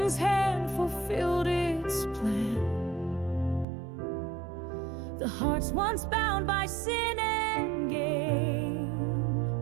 hand fulfilled its plan. The hearts once bound by sin and gain,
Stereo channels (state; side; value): drops out; left; at 3.7 s